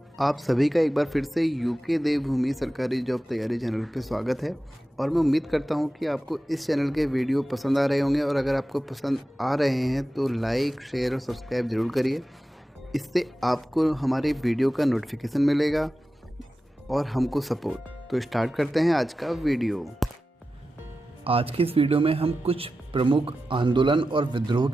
आप सभी का एक बार फिर से यूके देवभूमि सरकारी जॉब तैयारी चैनल पे स्वागत है। और मैं उम्मीद करता हूँ कि आपको इस चैनल के वीडियो पसंद आ रहे होंगे, और अगर आपको पसंद आ रहे हैं तो लाइक, शेयर और सब्सक्राइब ज़रूर करिए। इससे आपको हमारे वीडियो का नोटिफिकेशन मिलेगा और हमको सपोर्ट। तो स्टार्ट करते हैं आज का वीडियो। आज की इस वीडियो में हम कुछ प्रमुख आंदोलन और विद्रोह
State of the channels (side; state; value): both; normal; correlation 0.93